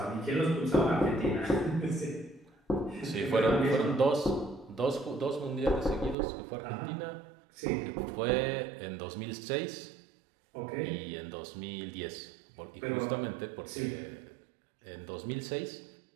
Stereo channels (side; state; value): left; drops out; at 6.2 s